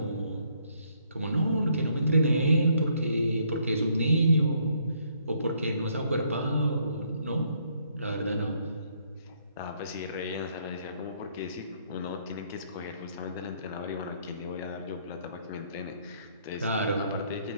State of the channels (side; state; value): both; inverted; correlation -0.68